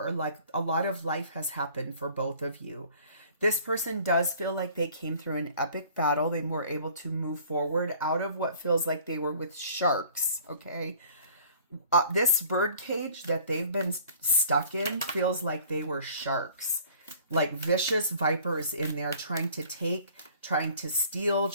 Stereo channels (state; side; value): inverted; both; correlation -0.52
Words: like a lot of life has happened for both of you. This person does feel like they came through an epic battle. They were able to move forward out of what feels like they were with sharks, okay? This bird cage that they've been stuck in feels like they were sharks. Like vicious vipers in there trying to take, trying to steal,